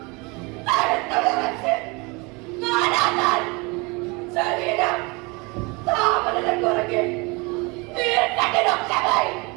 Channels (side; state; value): left; quieter; 27.4 dB